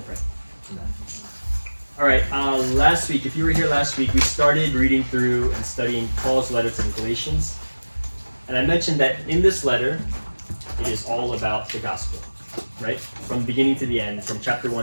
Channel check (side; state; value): both; inverted; correlation -1.00